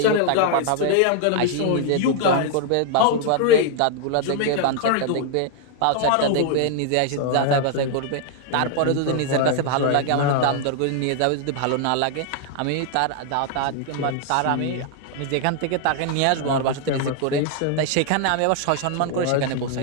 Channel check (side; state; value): both; different; correlation 0.00